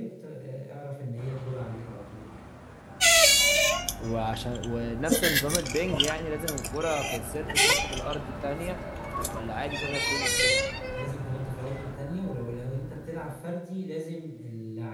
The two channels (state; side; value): identical; both; correlation 1.00